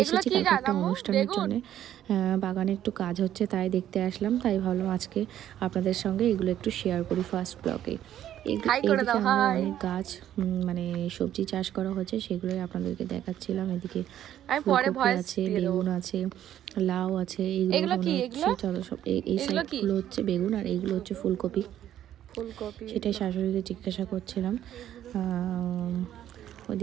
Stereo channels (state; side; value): quieter; left; 11.4 dB